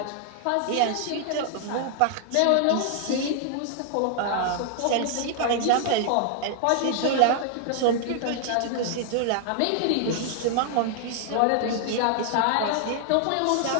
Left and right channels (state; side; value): different; both; correlation 0.00